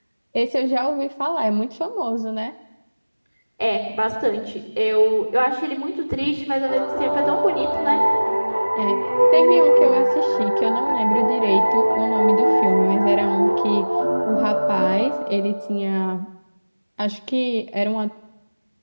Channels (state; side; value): inverted; both; correlation -1.00